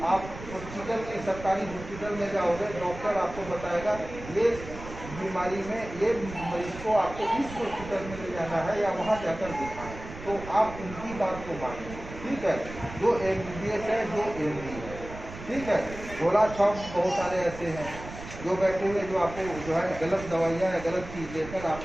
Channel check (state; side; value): noise; right; rumble, 12 dB below the sound